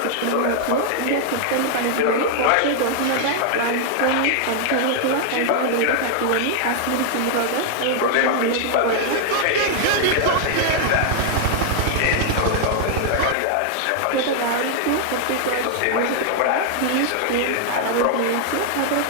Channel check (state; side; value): different; both; correlation 0.00